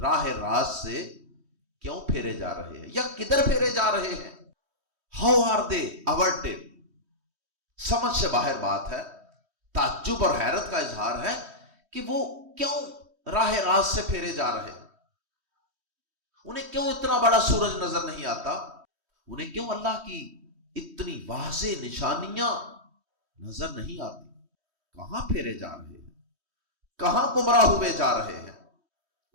راہ راست سے کیوں پھیرے جا رہے ہیں یا کدھر پھیرے جا رہے ہیں؟ ہاؤ آر دے averted، سمجھ سے باہر بات ہے، تعجب اور حیرت کا اظہار ہے کہ وہ کیوں راہ راست سے پھیرے جا رہے ہیں، انہیں کیوں اتنا بڑا سورج نظر نہیں آتا، انہیں کیوں اللہ کی اتنی واضح نشانیاں نظر نہیں آتی، کہاں پھیرے جا رہے ہیں؟ کہاں گمراہ ہوئے جا رہے ہیں؟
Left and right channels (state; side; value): late; left; 3.1 ms